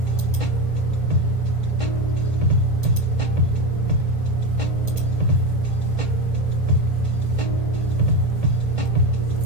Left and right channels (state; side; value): late; left; 1.8 ms